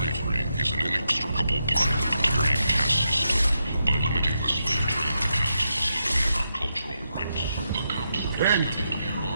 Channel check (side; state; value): both; inverted; correlation -0.84